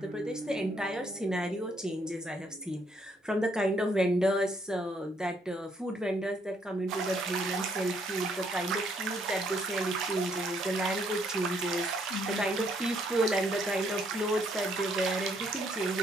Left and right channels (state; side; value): normal; both; correlation 0.70